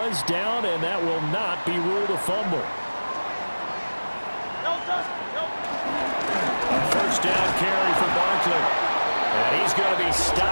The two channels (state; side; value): inverted; both; correlation -1.00